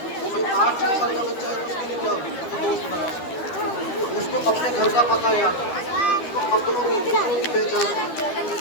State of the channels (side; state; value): right; late; 12 ms